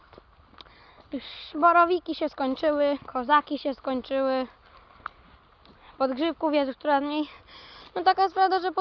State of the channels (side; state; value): both; identical; correlation 1.00